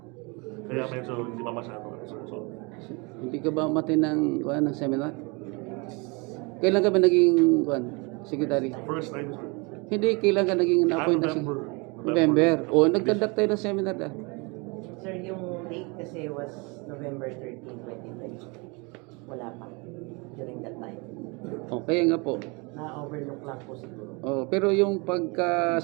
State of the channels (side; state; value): left; quieter; 29.3 dB